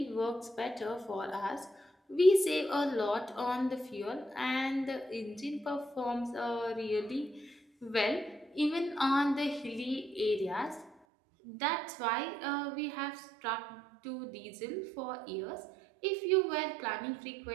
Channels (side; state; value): left; drops out; at 10.9 s